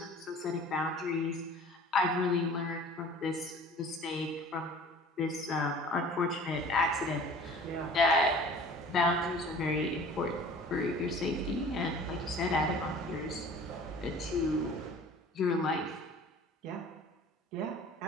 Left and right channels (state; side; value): normal; both; correlation 0.46